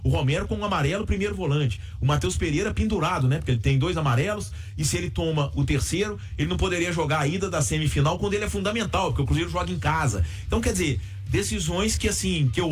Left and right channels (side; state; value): both; identical; correlation 1.00